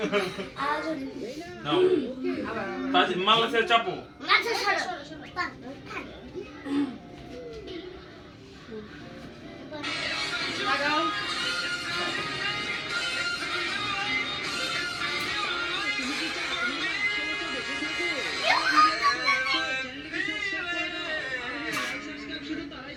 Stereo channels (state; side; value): identical; both; correlation 1.00